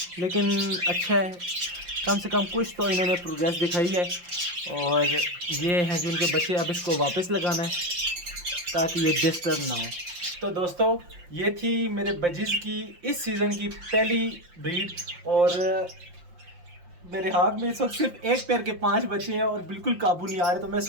लेकिन अच्छा है, कम से कम कुछ तो इन्होंने प्रोग्रेस दिखाई है। और ये हैं जो उनके बच्चे, अब इसको वापस लगाना है ताकि ये डिस्टर्ब ना हो। तो दोस्तों ये थी मेरे बजीज़ की इस सीज़न की पहली ब्रीड, और मेरे हाथ में इस वक्त सिर्फ एक पेयर के 5 बच्चे हैं और बिल्कुल काबू नहीं आ रहे। तो मैं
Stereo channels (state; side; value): late; left; 5.7 ms